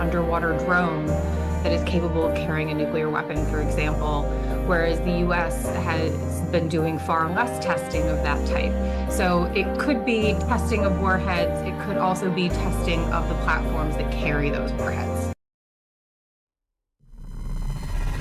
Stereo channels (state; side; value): identical; both; correlation 1.00